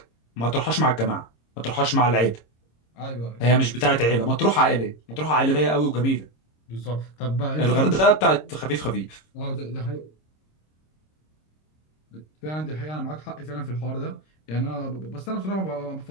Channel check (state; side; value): late; right; 26 ms